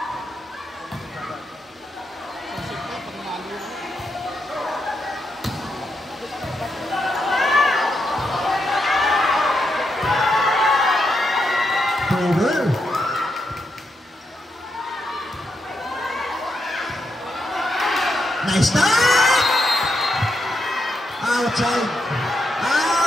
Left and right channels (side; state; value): both; normal; correlation 0.83